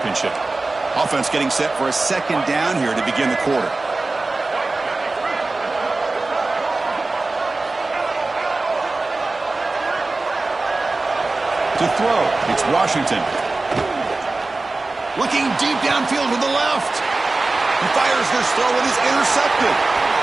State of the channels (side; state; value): left; quieter; 3.3 dB